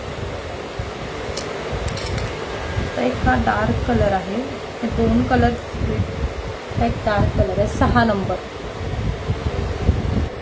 तर एक हा डार्क कलर आहे, हे 2 कलर, एक डार्क कलर आहे. 6 नंबर,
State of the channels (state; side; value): identical; both; correlation 1.00